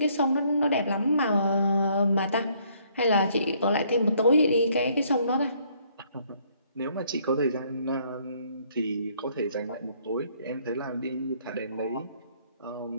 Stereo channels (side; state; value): both; inverted; correlation -0.65